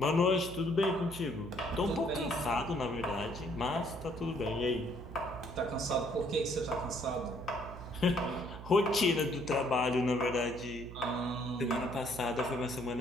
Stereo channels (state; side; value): noise; right; hum, 12 dB below the sound